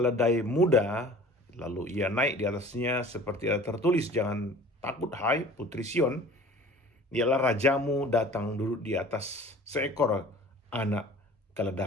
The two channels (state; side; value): normal; both; correlation 0.46